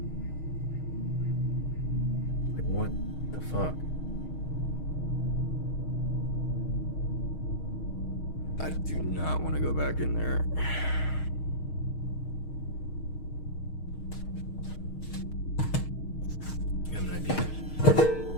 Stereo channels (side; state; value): right; late; 6.4 ms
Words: Like, what the fuck? I do not want to go back in there. You have an idea?